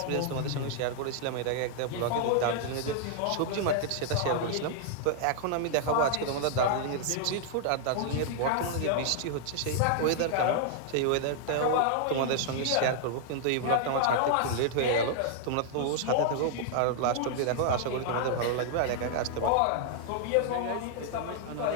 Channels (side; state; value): both; different; correlation -0.01